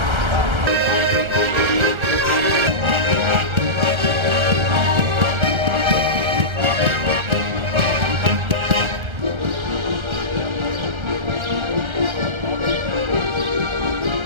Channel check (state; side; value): late; left; 1.3 ms